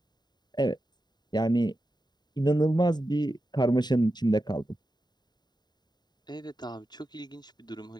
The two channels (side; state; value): right; late; 0.20 ms